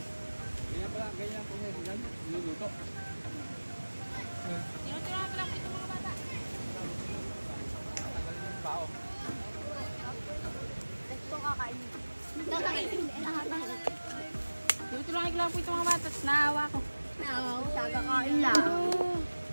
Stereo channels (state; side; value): inverted; both; correlation -1.00